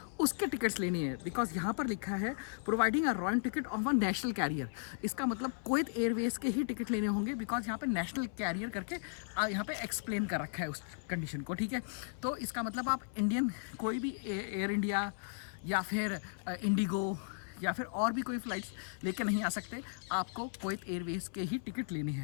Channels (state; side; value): silent; right; 54 dB below the other